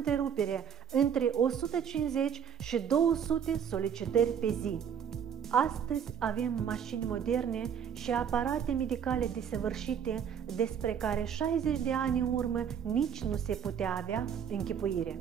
între 150 și 200 solicitări pe zi. Astăzi avem mașini moderne și aparate medicale desăvârșite despre care 60 de ani în urmă nici nu se putea avea închipuire.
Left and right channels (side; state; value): left; quieter; 8.1 dB